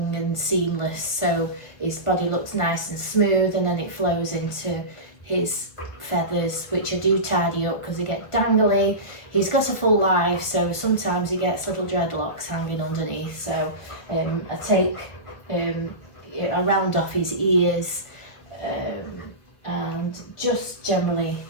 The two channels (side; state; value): right; late; 1.4 ms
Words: and seamless, so his body looks nice and smooth, and then it flows into his feathers, which I do tidy up because they get dangly. He's got a full life, so sometimes he gets little dreadlocks hanging underneath, so I take a round off his ears, and just generally,